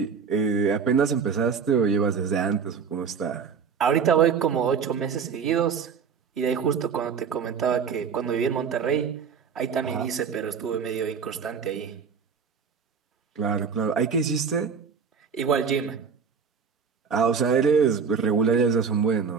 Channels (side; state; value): left; quieter; 6.1 dB